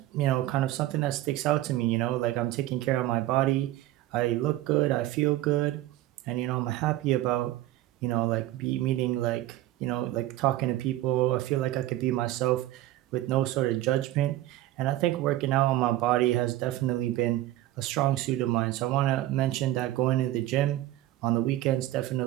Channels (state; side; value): quieter; left; 15.1 dB